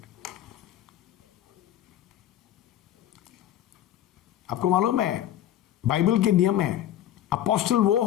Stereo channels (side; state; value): right; quieter; 11.9 dB